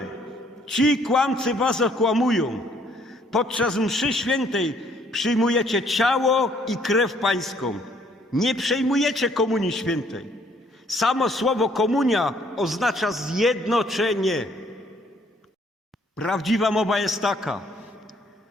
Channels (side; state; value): both; normal; correlation 0.64